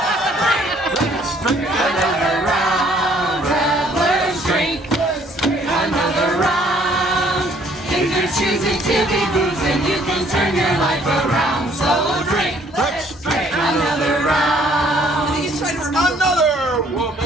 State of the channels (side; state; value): both; normal; correlation 0.62